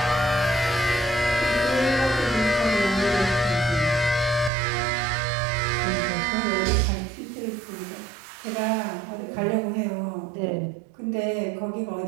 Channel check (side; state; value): left; drops out; at 4.5 s